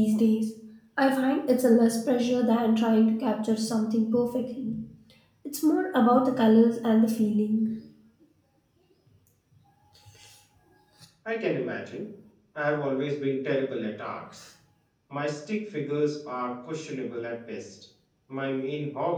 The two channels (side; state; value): both; identical; correlation 1.00